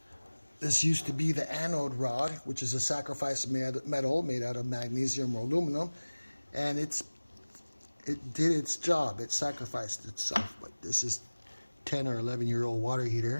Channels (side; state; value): both; inverted; correlation -1.00